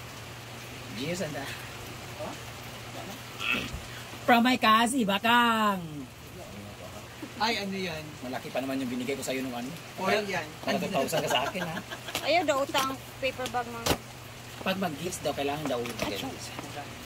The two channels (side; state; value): both; identical; correlation 1.00